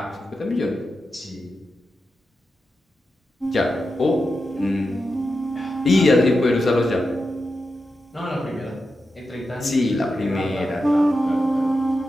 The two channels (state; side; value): normal; both; correlation 0.89